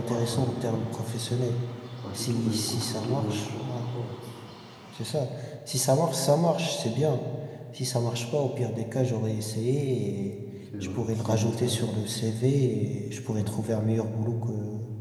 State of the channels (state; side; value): identical; both; correlation 1.00